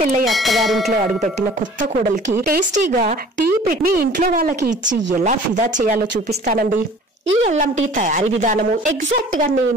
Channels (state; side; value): normal; both; correlation 0.48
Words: అత్తగారింట్లో అడుగుపెట్టిన కొత్త కోడలికి టేస్టీగా టీ పెట్టి మీ ఇంట్లో వాళ్ళకి ఇచ్చి ఎలా ఫిదా చేయాలో చూపిస్తానండి. ఈ అల్లం టీ తయారీ విధానము ఎగ్జాక్ట్ గా